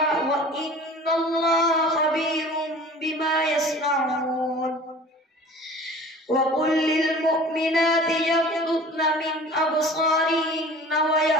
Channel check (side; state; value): both; normal; correlation 0.43